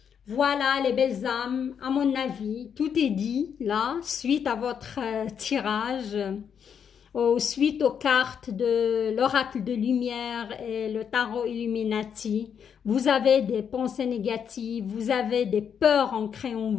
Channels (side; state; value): right; quieter; 7.6 dB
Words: Voilà les belles âmes, à mon avis, tout est dit là, suite à votre tirage. Suite aux cartes de l'oracle de lumière et le tarot Illuminati, vous avez des pensées négatives, vous avez des peurs ancrées en